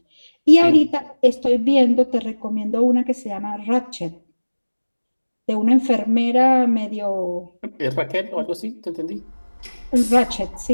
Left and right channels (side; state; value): both; inverted; correlation -1.00